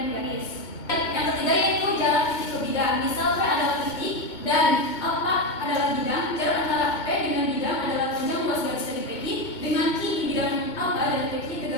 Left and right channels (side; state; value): right; late; 2.2 ms